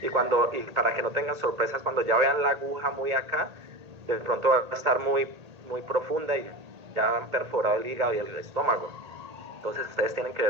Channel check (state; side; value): late; left; 1.8 ms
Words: Y para que no tengan sorpresas, cuando ya vean la aguja muy acá, de pronto va a estar muy, muy profunda y ya han perforado el hígado y el estómago. Entonces ustedes tienen que